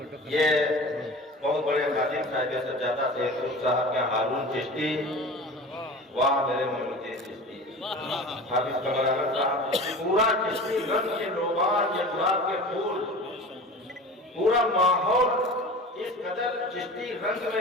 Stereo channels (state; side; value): normal; both; correlation 0.36